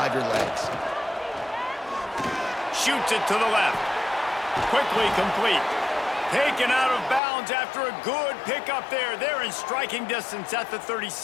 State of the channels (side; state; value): right; drops out; at 7.2 s